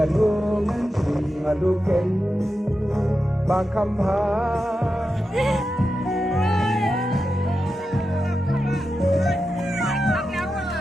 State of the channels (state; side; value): normal; both; correlation 0.90